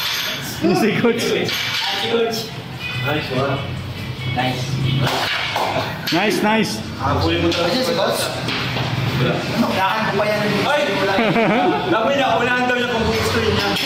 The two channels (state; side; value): identical; both; correlation 1.00